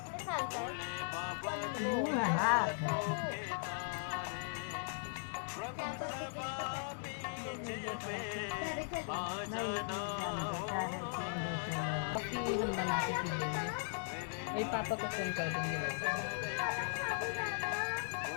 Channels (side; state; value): right; silent; digital silence